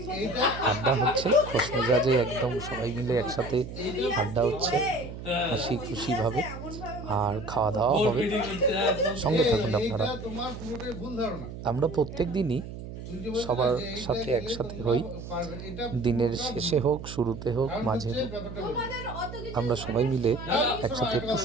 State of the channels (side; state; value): right; noise; hum, 10 dB below the sound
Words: আড্ডা হচ্ছে, খোশ মেজাজে একদম সবাই মিলে একসাথে আড্ডা হচ্ছে হাসি খুশিভাবে, আর খাওয়া দাওয়া হবে। সঙ্গে থাকুন আপনারা। আমরা প্রত্যেক দিনই সবার সাথে একসাথে হই, দিনের শেষে হোক, শুরুতে হোক, মাঝে হোক, আমরা সবাই মিলে একসাথে একটু